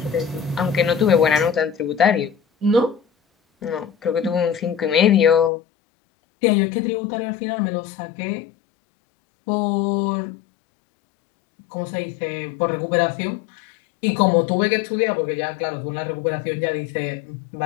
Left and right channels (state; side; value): drops out; right; at 5.5 s